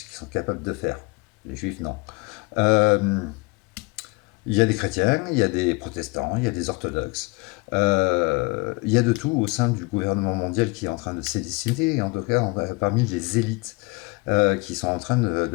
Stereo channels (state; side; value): quieter; right; 27.7 dB